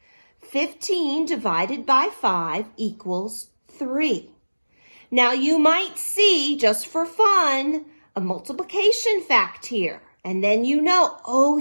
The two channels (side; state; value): both; inverted; correlation -1.00